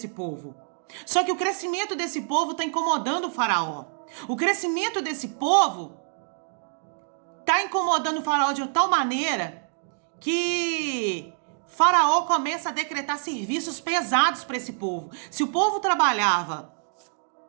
povo. Só que o crescimento desse povo está incomodando o faraó. O crescimento desse povo está incomodando o faraó de tal maneira que Faraó começa a decretar serviços pesados para esse povo. Se o povo trabalhava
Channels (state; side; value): silent; left; 61 dB below the other